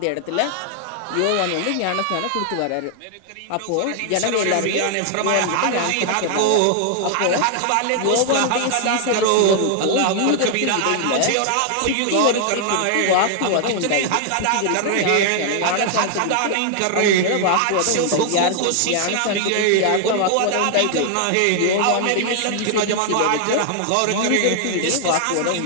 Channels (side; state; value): both; different; correlation 0.00